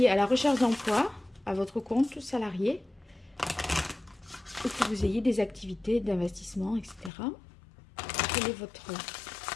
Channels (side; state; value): right; drops out; at 7.1 s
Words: à la recherche d'emploi, à votre compte salarié, ou que vous ayez des activités d'investissement, etc.